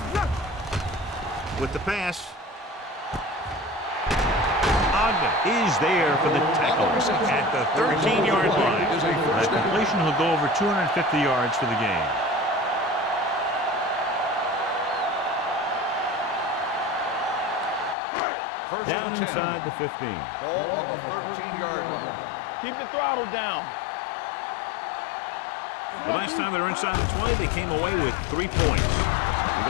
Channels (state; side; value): drops out; right; at 17.9 s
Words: With the pass. Ogden is there for the tackle at the 13-yard line. That completion will go over 250 yards for the game. Down inside the 15. Ball on the 13-yard line. Keep the throttle down. One. The last time they were inside the 20, they came away with 3 points.